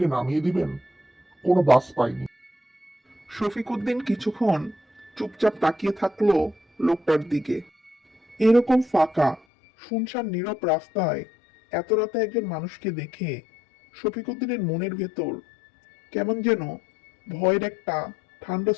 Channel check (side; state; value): right; drops out; at 9.4 s